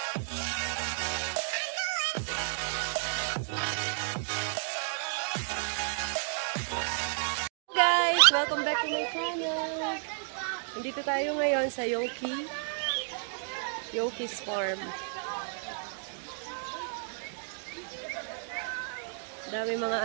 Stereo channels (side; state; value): left; silent; digital silence